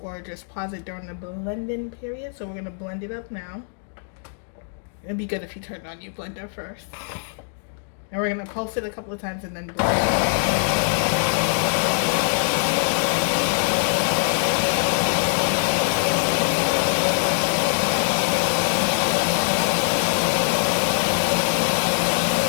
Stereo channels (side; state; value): right; silent; digital silence